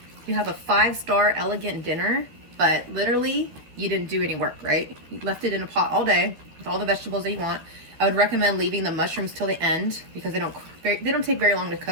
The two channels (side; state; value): left; late; 12 ms